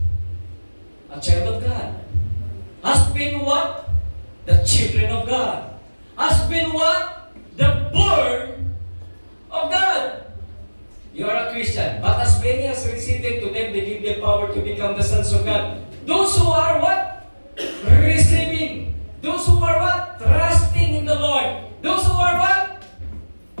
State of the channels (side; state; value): both; inverted; correlation -1.00